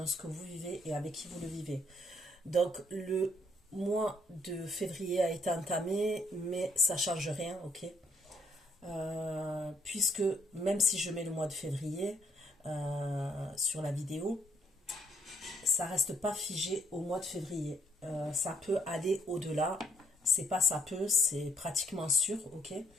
ce que vous vivez et avec qui vous le vivez. Donc le mois de février a été entamé, mais ça ne change rien, ok? Puisque même si je mets le mois de février sur la vidéo, ça reste pas figé au mois de février. Ça peut aller au-delà. C'est pas ça peut, c'est pratiquement sûr, ok,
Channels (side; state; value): both; normal; correlation 0.69